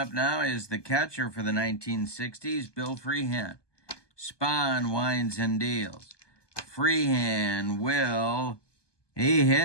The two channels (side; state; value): right; late; 1.2 ms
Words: now is the catcher for the 1960s, Bill Freehand. Spahn winds and deals. Freehand he